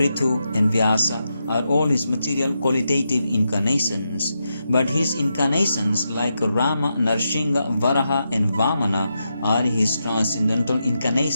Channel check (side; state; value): both; inverted; correlation -0.86